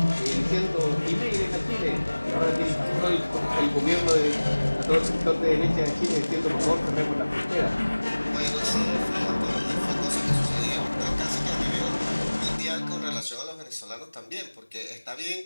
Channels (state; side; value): inverted; both; correlation -1.00